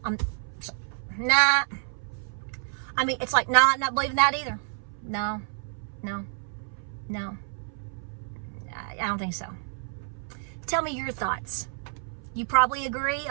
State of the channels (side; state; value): left; silent; 57 dB below the other